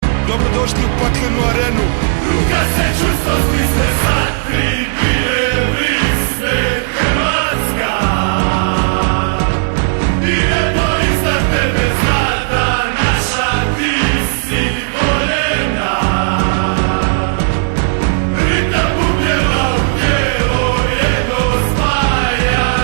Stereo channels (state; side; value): silent; left; digital silence